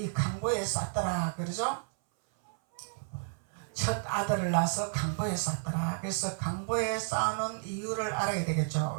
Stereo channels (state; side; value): silent; left; 57 dB below the other